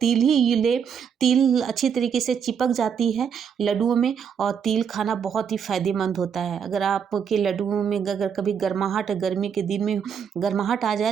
तिल ही ले। तिल अच्छी तरीके से चिपक जाती है लड्डुओं में, और तिल खाना बहुत ही फ़ायदेमंद होता है। अगर आपके लड्डुओं में अगर कभी गर्माहट, गर्मी के दिन में गर्माहट आ जाए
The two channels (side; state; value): left; quieter; 7.3 dB